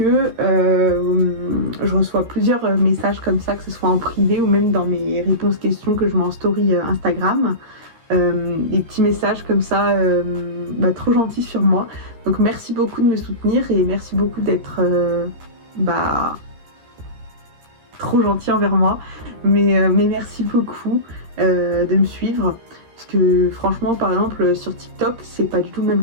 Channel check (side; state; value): left; late; 13 ms